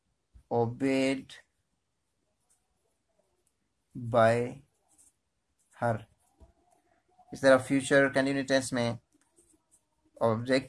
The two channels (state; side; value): identical; both; correlation 1.00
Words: obeyed by her। इस तरह फ्यूचर कंटिन्यूस टेंस में